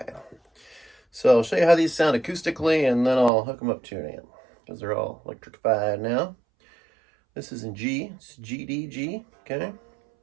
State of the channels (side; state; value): left; drops out; at 3.3 s